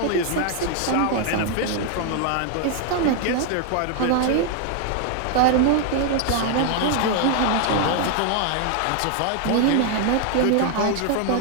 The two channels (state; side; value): different; both; correlation 0.00